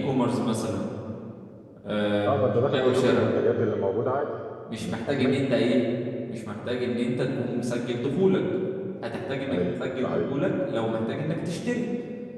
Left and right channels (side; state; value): both; identical; correlation 1.00